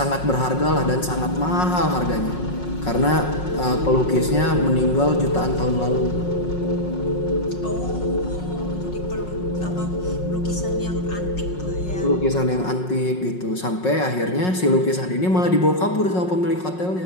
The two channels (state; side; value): late; right; 5.5 ms